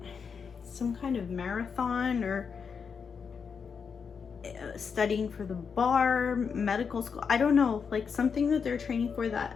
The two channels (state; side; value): quieter; right; 6.1 dB